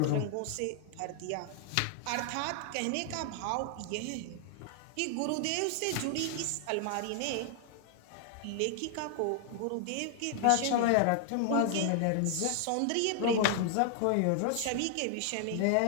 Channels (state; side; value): different; both; correlation 0.00